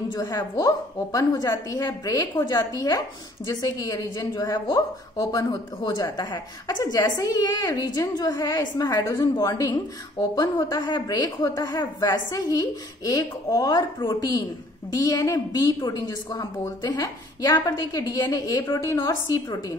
जो है वो ओपन हो जाती है, ब्रेक हो जाती है, जिससे कि ये रीजन जो है वो ओपन हो जाता है। अच्छा जैसे ही ये रीजन जो है इसमें हाइड्रोजन बॉन्डिंग ओपन होता है, ब्रेक होता है, वैसे ही एक और प्रोटीन DNA B प्रोटीन जिसको हम बोलते हैं, यहाँ पर देखिए DNA A प्रोटीन और C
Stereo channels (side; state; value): both; normal; correlation 0.57